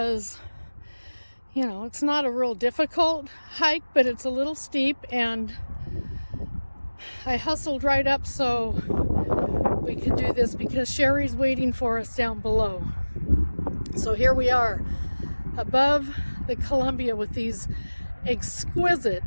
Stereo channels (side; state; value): both; inverted; correlation -1.00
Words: you know, it's not a real difficult hike, but it's a little steep, and I hustled right up so we could do this because Sherry's waiting for us down below. So here we are above the Columbia with these exquisite